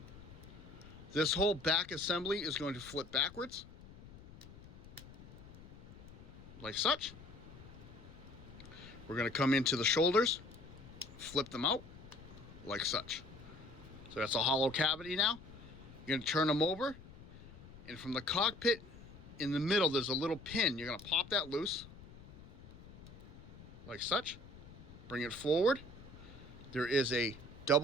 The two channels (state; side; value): noise; left; rumble, 18 dB below the sound